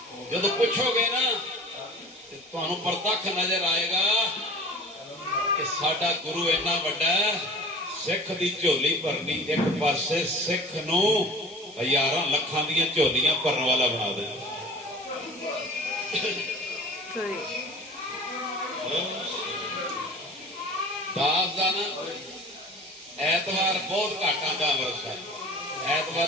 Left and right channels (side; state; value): both; normal; correlation 0.41